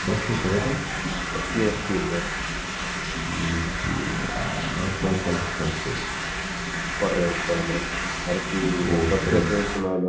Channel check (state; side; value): identical; both; correlation 1.00